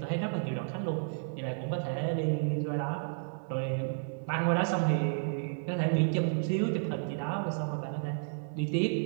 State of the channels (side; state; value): left; silent; digital silence